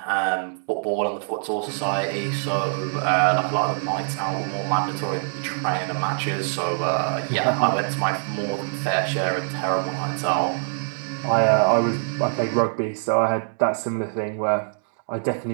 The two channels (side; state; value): left; silent; digital silence